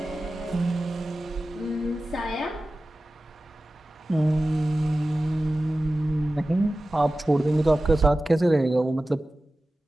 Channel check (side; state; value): both; normal; correlation 0.95